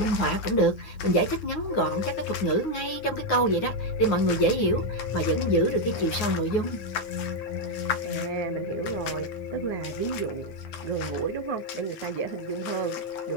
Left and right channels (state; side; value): late; right; 9.6 ms